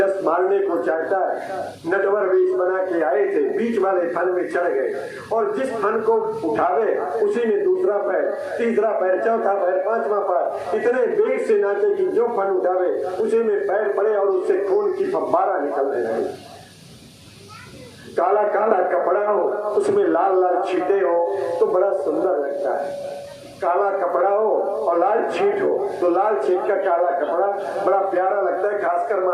मारने को चाहता है। नटवर वेश बना के आए थे, बीच वाले फन में चढ़ गए और जिस फन को उठावे उसी में दूसरा पैर, तीसरा पैर, चौथा पैर, पांचवा पैर इतने वेग से नाचे कि जो फन उठावे उसी में पैर पड़े और उससे खून की फव्वारा निकलने लगे। काला काला कपड़ा हो, उसमें लाल लाल छींटे हो तो बड़ा सुंदर लगता है। काला कपड़ा हो और लाल छींट हो तो लाल छींट का काला कपड़ा बड़ा प्यारा लगता है, खासकर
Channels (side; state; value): both; identical; correlation 1.00